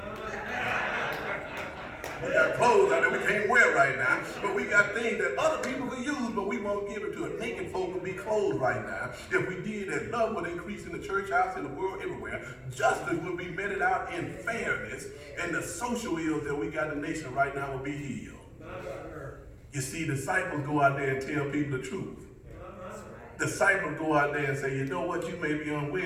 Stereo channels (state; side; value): identical; both; correlation 1.00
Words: We got clothes out there we can't wear right now, but we got things that other people could use, but we won't give it to it. Naked folk would be clothed right now. If we did that, love would increase in the church house, in the world, everywhere. Justice would be meted out in fairness, and the social ills that we got in the nation right now will be healed. You see, disciples go out there and tell people the truth. Disciples go out there and say, you know what, you may be